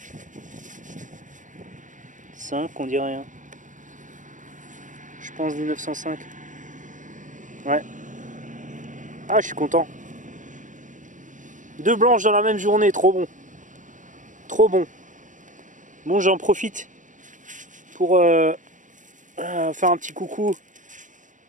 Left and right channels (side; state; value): left; late; 0.37 ms